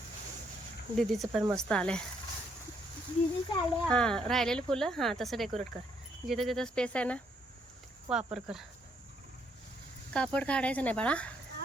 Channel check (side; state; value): both; normal; correlation 0.71